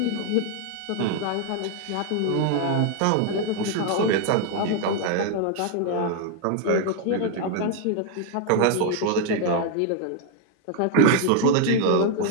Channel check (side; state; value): both; different; correlation 0.00